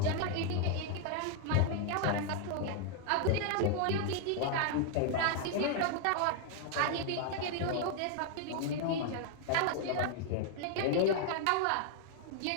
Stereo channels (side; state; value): both; different; correlation 0.00